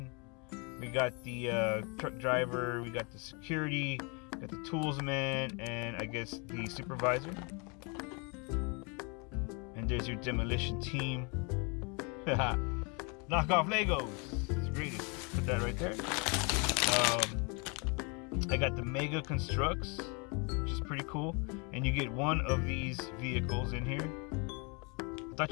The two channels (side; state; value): right; quieter; 32.9 dB